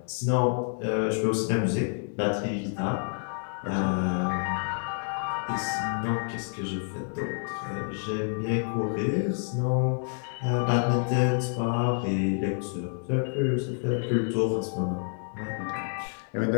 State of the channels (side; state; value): right; silent; 56 dB below the other